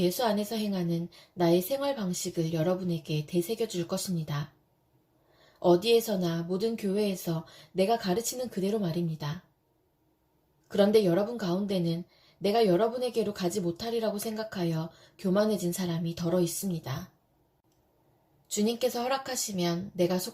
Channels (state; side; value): identical; both; correlation 1.00